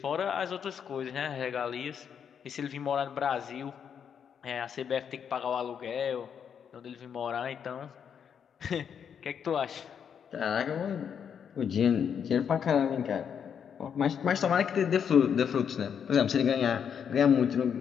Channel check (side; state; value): right; quieter; 7.7 dB